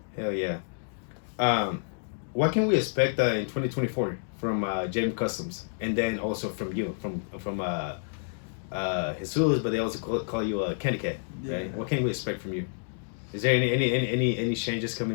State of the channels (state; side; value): silent; right; digital silence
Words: Hell yeah. What can we expect in 2024 from JM Customs, and then also from you, from Jesus, but they also call you Candy Cat, right? Yeah. What can we expect from you? Is there any changes